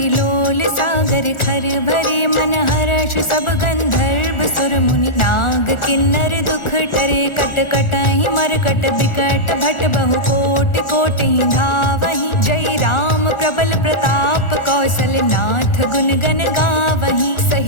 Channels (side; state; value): right; late; 1.4 ms